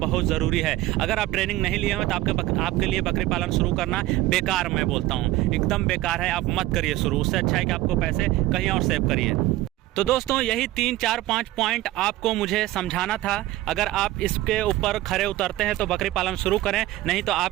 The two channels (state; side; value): quieter; left; 16.5 dB